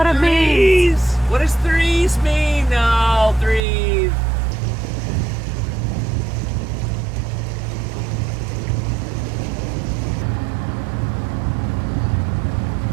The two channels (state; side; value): drops out; left; at 3.6 s